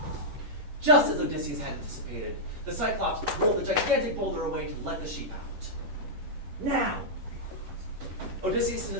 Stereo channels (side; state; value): left; late; 10 ms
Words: Just as Odysseus had anticipated, the Cyclops rolled a gigantic boulder away to let the sheep out. Now, Odysseus and